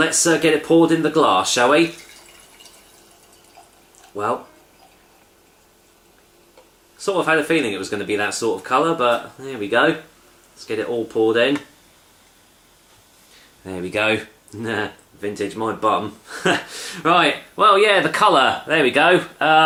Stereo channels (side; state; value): both; identical; correlation 1.00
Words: get it poured in the glass, shall we? Well, sort of had a feeling it was going to be that sort of colour, but there we go. Let's get it all poured in. There we go. Vintage, my bum. Right, well, yeah, the colour. There we